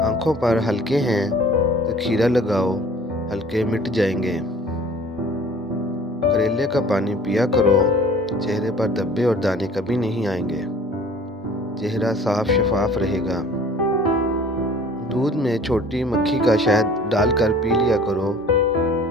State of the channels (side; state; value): both; normal; correlation 0.49